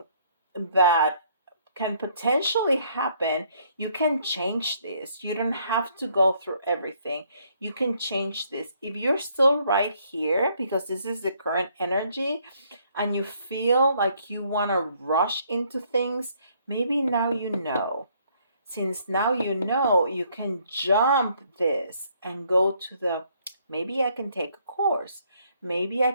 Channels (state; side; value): inverted; both; correlation -0.67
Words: that can potentially happen. You can change this. You don't have to go through everything. You can change this. If you're still right here, because this is the current energy, and you feel like you want to rush into things, maybe now you know. Since now you know, you can jump this and go to the, maybe I can take a course. Maybe I